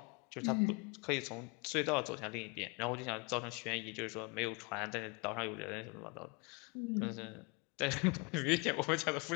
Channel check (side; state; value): right; quieter; 29.8 dB